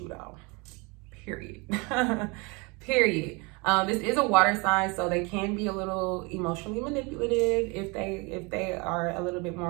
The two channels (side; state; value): left; quieter; 28.6 dB